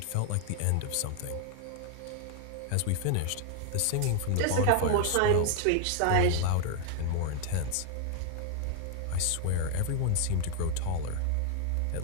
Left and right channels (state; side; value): different; both; correlation 0.00